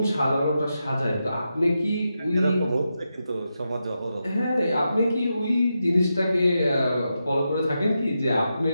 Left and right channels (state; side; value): inverted; both; correlation -0.87